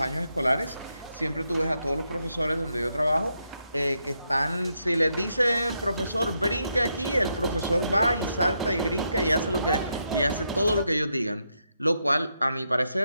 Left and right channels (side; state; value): both; inverted; correlation -0.81